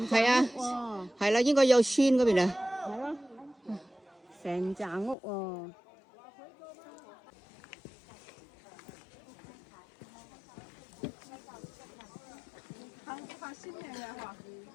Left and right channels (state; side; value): drops out; right; at 5.2 s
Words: 係啊棟屋喎。係啦，應該有村嗰邊啊。係咯，成棟屋喎。